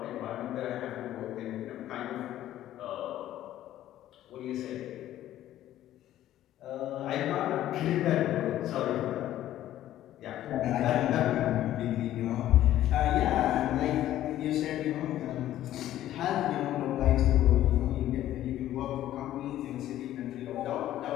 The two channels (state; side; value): quieter; right; 13.0 dB